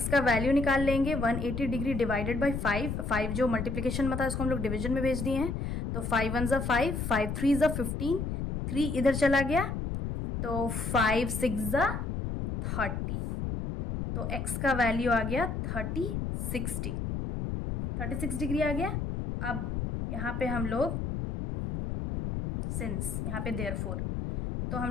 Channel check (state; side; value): noise; left; rumble, 3 dB below the sound